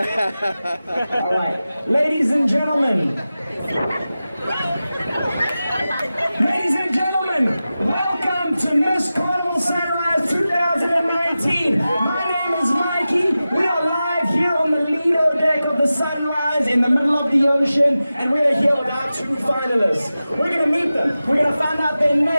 All right. Ladies and gentlemen. Ladies and gentlemen, welcome to Miss Carnival Sunrise 2019. My name is Mikey. We are live here on the Lido deck of the Sunrise in the middle of the ocean, and we are here with our two finalists. We're going to meet them. We're going to find out their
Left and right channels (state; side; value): inverted; both; correlation -0.94